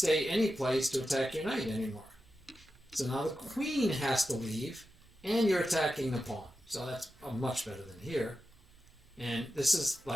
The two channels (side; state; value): both; normal; correlation 0.91